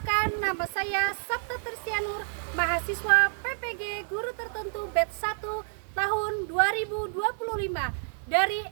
nama saya Sabta Tersianur, mahasiswa PPG Guru Tertentu Batch 1 tahun 2025 dari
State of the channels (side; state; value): left; silent; digital silence